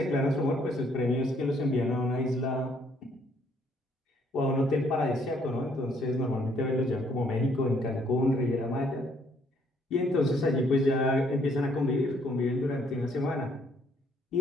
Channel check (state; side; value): normal; both; correlation 0.67